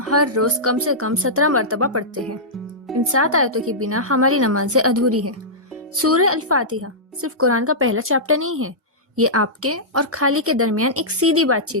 ہر روز کم سے کم 17 مرتبہ پڑھتے ہیں۔ ان 7 آیتوں کے بنا ہماری نمازیں ادھوری ہے۔ سورہ الفاتحہ صرف قرآن کا پہلا چیپٹر نہیں ہے، یہ آپ کے اور خالق کے درمیان ایک سیدھی بات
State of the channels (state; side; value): normal; both; correlation -0.13